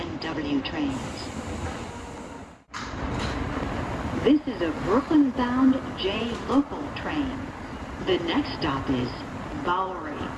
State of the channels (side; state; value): both; identical; correlation 1.00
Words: W trains. This is a Brooklyn-bound J local train. The next stop is Bowery.